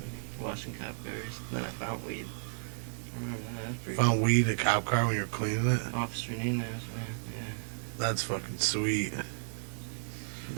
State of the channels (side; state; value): left; silent; 56 dB below the other